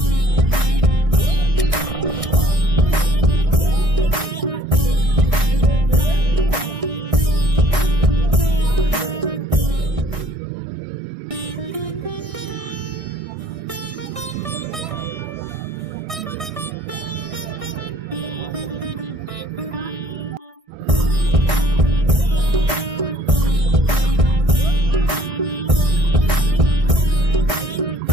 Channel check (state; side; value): late; left; 1.6 ms